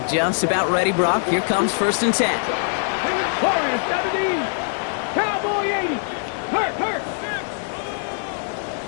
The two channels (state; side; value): silent; right; 64 dB below the other